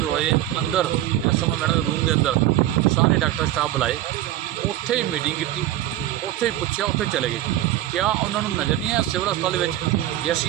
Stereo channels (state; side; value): quieter; left; 13.9 dB